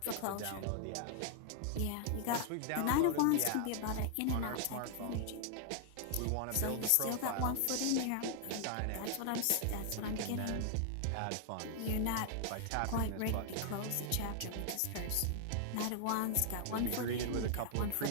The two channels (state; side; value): different; both; correlation 0.00